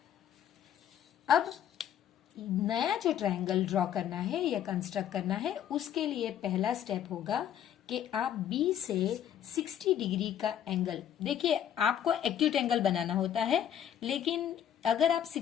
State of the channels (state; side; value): quieter; right; 10.0 dB